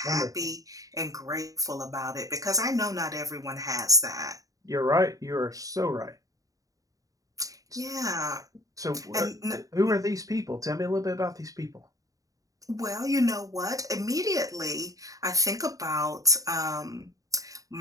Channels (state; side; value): late; left; 0.17 ms